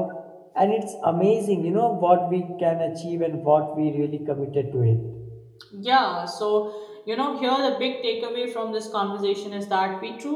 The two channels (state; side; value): identical; both; correlation 1.00